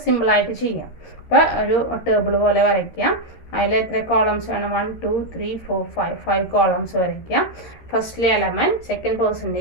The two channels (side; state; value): right; late; 13 ms